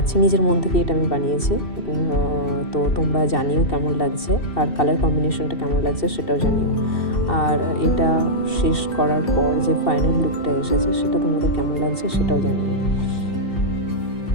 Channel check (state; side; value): late; right; 2.7 ms